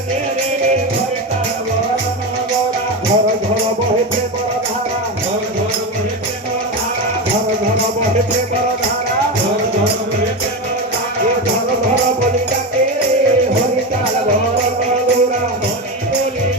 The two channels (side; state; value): both; normal; correlation 0.18